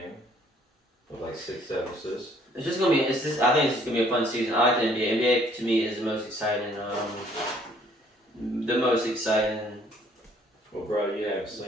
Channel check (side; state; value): both; normal; correlation 0.61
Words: With like 6, 7 assists. It's just gonna be. I think it's just gonna be a fun season. I like the NBA. NBA to me is the most exciting. The most exciting. Well, bro, you haven't